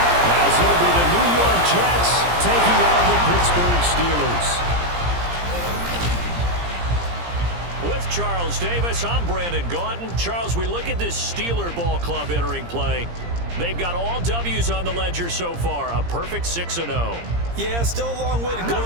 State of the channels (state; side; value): late; left; 17 ms